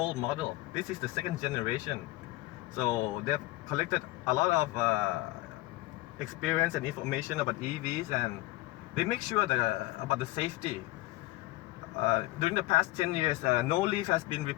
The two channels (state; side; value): quieter; right; 19.3 dB